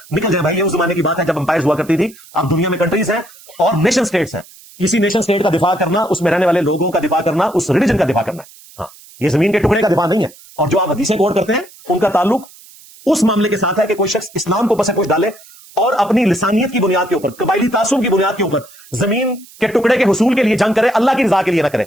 نکل جائے بھائی۔ یہ اس زمانے کی بات ہے جب امپائرز ہوا کرتی تھی، اب دنیا میں کنٹریز ہیں اور نیشن سٹیٹس ہیں، کسی نیشن سٹیٹ کا دفاع کرنا، اس میں رہنے والے لوگوں کا دفاع کرنا، اس ریلیجن کا دفاع کرنا ہے، ہاں یہ زمین کے ٹکڑے کا دفاع نہیں ہے۔ اور جو آپ حدیثیں کوٹ کرتے ہیں ان کا تعلق اس معاملے کے ساتھ ہے کہ کوئی شخص اسلام کو پس پوش ڈالے اور اپنی لسانیت کی بنیاد کے اوپر، قبائلی تعصب کی بنیاد کے اوپر زمین کے ٹکڑے کے حصول کے لیے جنگ کرے، اللہ کی رضا کے لیے نہ کرے۔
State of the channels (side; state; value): right; noise; hiss, 23 dB below the sound